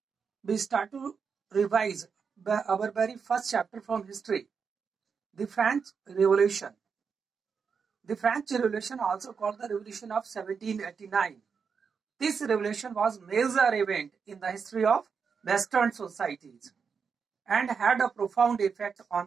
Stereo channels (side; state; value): left; quieter; 5.9 dB